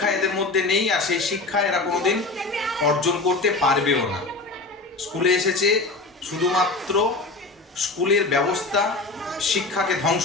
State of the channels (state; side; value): quieter; right; 3.4 dB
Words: এদের মধ্যে নেই, আর সেই শিক্ষা এরা কোনোদিন অর্জন করতে পারবেও না। স্কুলে এসেছে শুধুমাত্র স্কুলের ব্যবস্থা, শিক্ষাকে ধ্বংস